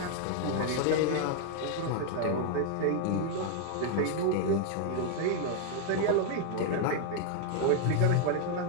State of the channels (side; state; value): both; different; correlation 0.00